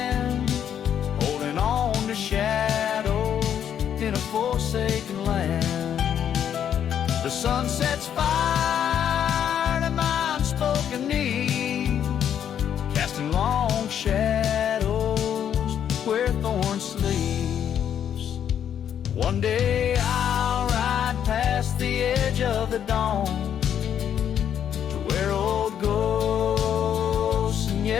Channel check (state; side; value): quieter; right; 9.2 dB